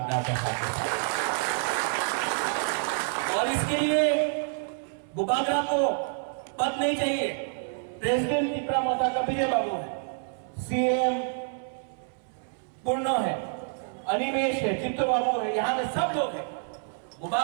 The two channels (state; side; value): silent; left; 59 dB below the other